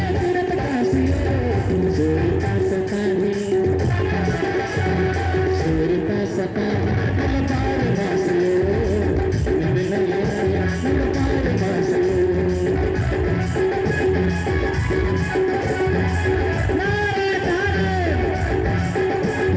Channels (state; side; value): identical; both; correlation 1.00